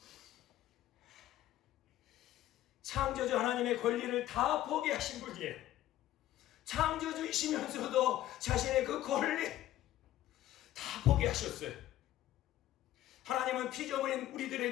창조주 하나님의 권리를 다 포기하신 분이에요. 창조주이시면서도 자신의 그 권리 다 포기하셨어요. 하나님은 피조물인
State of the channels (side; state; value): right; quieter; 13.7 dB